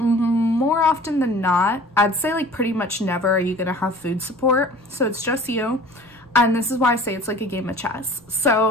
often than not, I'd say like pretty much never are you gonna have food support. So it's just you. And this is why I say it's like a game of chess.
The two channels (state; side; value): noise; right; rumble, 29 dB below the sound